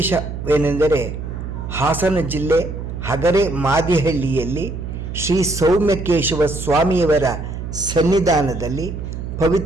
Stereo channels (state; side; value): noise; right; hum, 7 dB below the sound